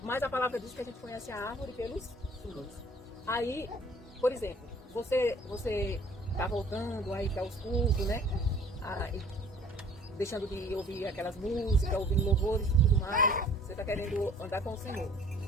Mas a palavra diz que a gente conhece a árvore pelos frutos. Aí, por exemplo, você está voltando aí para os cultos, né? Aí, deixando de ouvir aquelas músicas, ouvindo louvores e tudo mais. Você está querendo andar com o Senhor.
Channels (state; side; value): normal; both; correlation 0.52